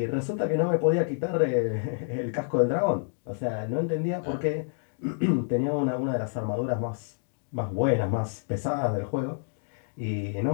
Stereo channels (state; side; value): silent; right; digital silence